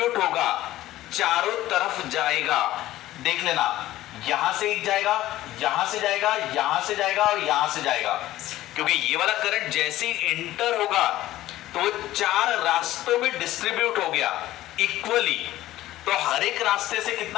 होगा, चारों तरफ जाएगा। देख लेना, यहां से एक जाएगा, यहां से जाएगा, यहां से जाएगा और यहां से जाएगा। क्योंकि ये वाला करंट जैसे ही इंटर होगा तो 4 रास्तों में डिस्ट्रीब्यूट हो गया इक्वली। तो हर एक रास्ते से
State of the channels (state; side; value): quieter; right; 15.1 dB